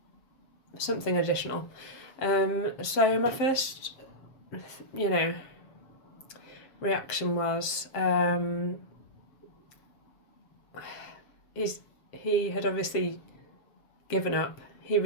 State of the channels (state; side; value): late; right; 7.4 ms